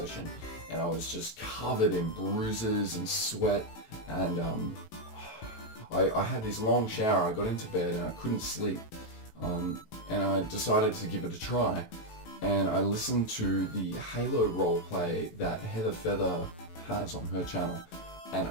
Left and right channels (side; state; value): right; late; 18 ms